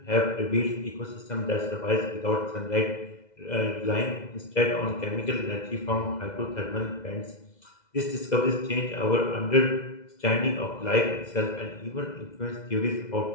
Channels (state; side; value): late; right; 2.0 ms